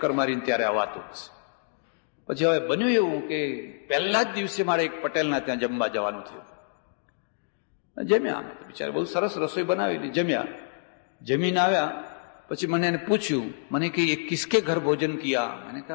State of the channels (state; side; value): silent; right; digital silence